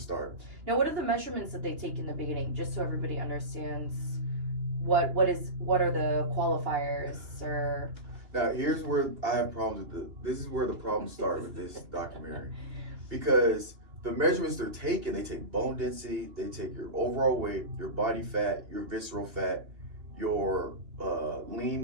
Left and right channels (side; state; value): left; late; 2.9 ms